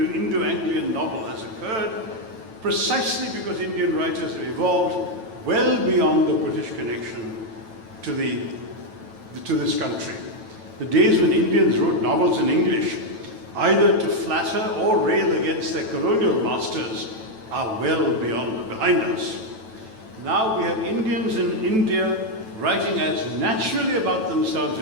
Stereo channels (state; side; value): late; left; 9.1 ms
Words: novel, has occurred precisely because Indian writers have evolved well beyond the British connection to this country. The days when Indians wrote novels in English, either to flatter or rail against their colonial masters, are well behind us. Now we have Indians in India writing as naturally about themselves